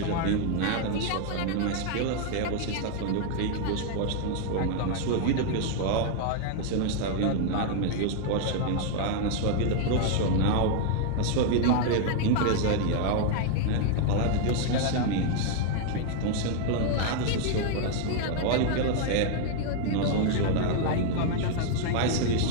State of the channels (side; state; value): both; different; correlation 0.00